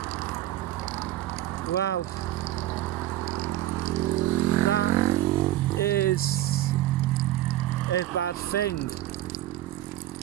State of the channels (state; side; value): quieter; left; 14.3 dB